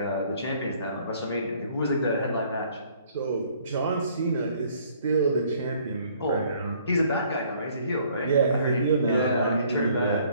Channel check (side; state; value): both; inverted; correlation -0.60